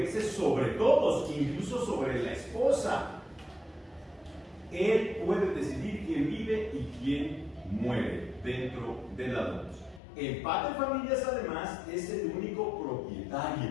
sobre todos, incluso sobre la esposa. Él puede decidir quién vive y quién muere dentro de la domus. El paterfamilias, además, es el único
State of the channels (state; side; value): drops out; right; at 10.0 s